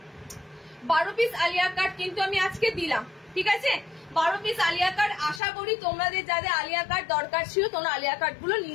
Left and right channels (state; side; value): drops out; right; at 5.4 s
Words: 12 পিস আলিয়া কাট কিন্তু আমি আজকে দিলাম, ঠিক আছে? 12 পিস আলিয়া কাট। আশা করি তোমাদের যাদের আলিয়া কাট দরকার ছিল, তোমরা আলিয়া কাট গুলো